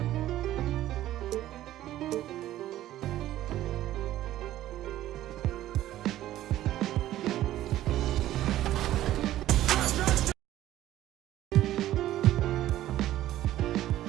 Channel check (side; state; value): left; quieter; 13.8 dB